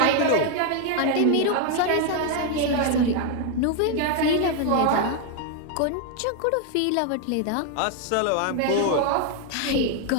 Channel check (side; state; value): both; different; correlation 0.01